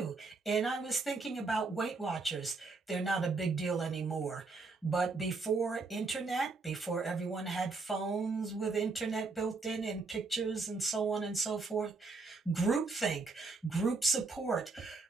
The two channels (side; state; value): left; quieter; 4.0 dB